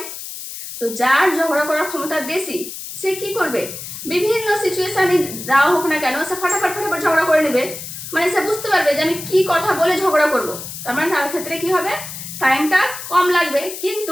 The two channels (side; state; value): left; noise; hiss, 10 dB below the sound